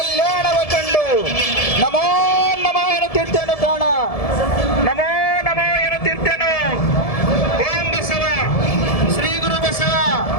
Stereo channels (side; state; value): right; late; 1.7 ms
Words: ನಮೋ ನಮೋ ಎನ್ನುತ್ತಿರ್ತೇನು ಪ್ರಾಣ, ನಮೋ ನಮೋ ಎನ್ನುತ್ತಿರ್ತೇನು. ಓಂ ಬಸವ, ಶ್ರೀ ಗುರು ಬಸವ,